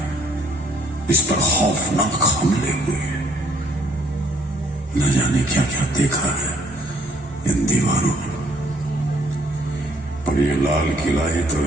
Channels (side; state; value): both; normal; correlation 0.63